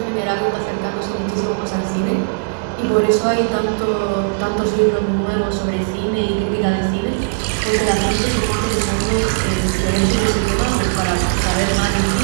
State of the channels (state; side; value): quieter; left; 33.5 dB